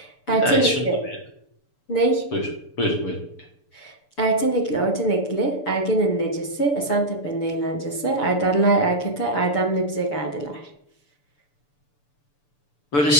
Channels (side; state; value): right; late; 6.9 ms